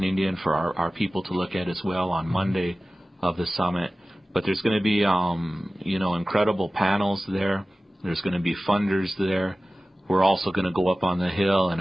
Indian for our people to look at as well on Monday of the summit. But there's going to be, incredible panels there. There's going to be funders there. We're also going to go up on the Hill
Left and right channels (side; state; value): both; normal; correlation 0.96